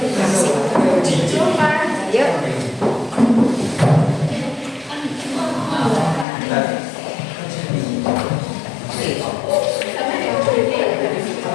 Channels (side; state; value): right; drops out; at 6.2 s